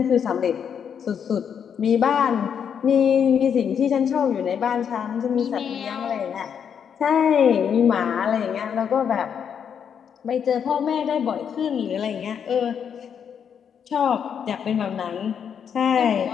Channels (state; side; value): quieter; right; 7.7 dB